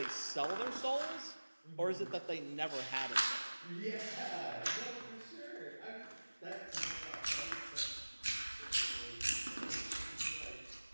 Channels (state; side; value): inverted; both; correlation -1.00